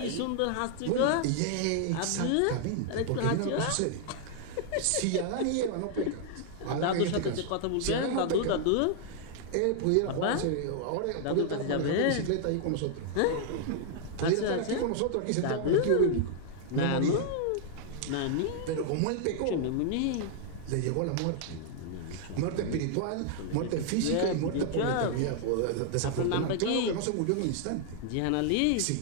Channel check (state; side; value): different; both; correlation 0.00